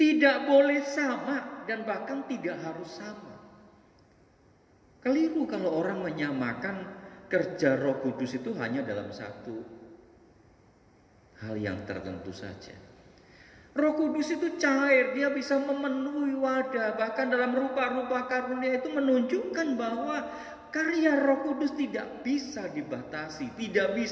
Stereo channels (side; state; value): both; identical; correlation 1.00